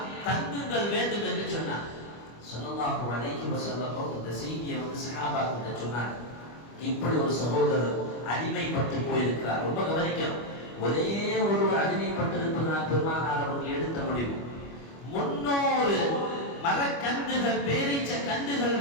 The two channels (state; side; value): late; right; 25 ms